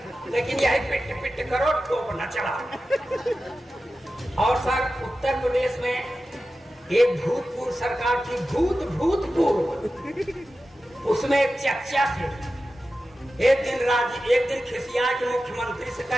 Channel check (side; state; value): both; normal; correlation 0.93